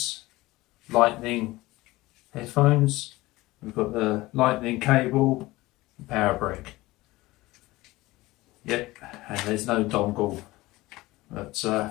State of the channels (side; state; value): right; quieter; 19.5 dB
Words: lightning headphones. We've got the lightning cable, and power brick. Yep, and there's no dongle. But